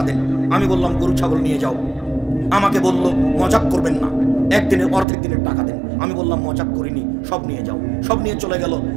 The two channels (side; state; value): left; drops out; at 5.1 s